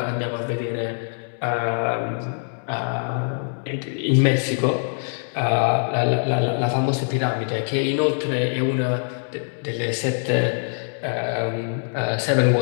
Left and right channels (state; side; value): silent; right; digital silence